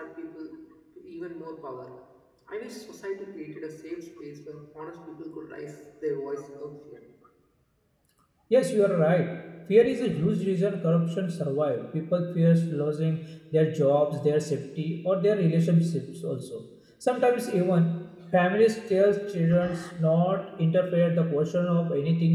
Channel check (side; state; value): both; identical; correlation 1.00